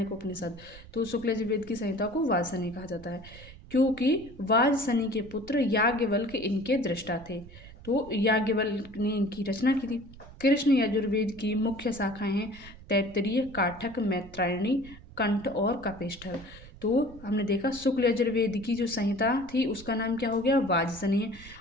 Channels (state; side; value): noise; right; rumble, 18 dB below the sound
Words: उपनिषद। तो शुक्ल यजुर्वेद की संहिता को वाजसनेय कहा जाता है, क्योंकि वाजसनेय के पुत्र याज्ञवल्क्य इनके दृष्टा थे। तो याज्ञवल्क्य ने इनकी रचना की थी। कृष्ण यजुर्वेद की मुख्य शाखाएं हैं तैत्तिरीय, काठक, मैत्रायणी, कंठ और कपिष्ठल। तो हमने देखा शुक्ल यजुर्वेद की जो संहिता थी उसका नाम क्या हो गया,